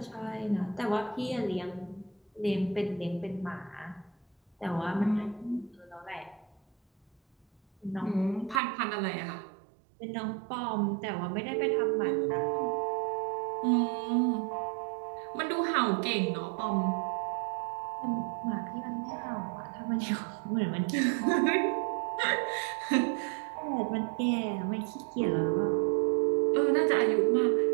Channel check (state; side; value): drops out; left; at 8.6 s